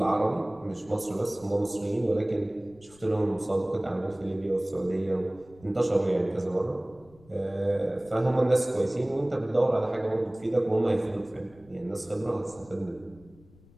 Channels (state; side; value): noise; left; rumble, 26 dB below the sound